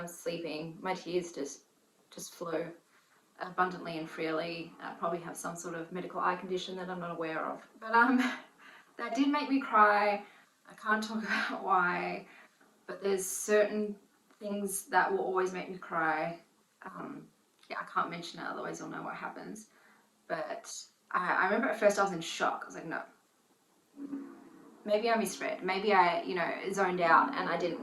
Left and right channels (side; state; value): both; identical; correlation 1.00